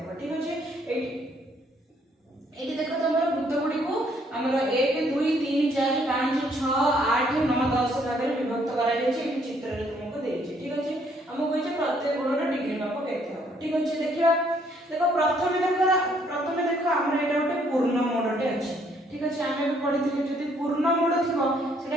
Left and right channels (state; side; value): normal; both; correlation 0.67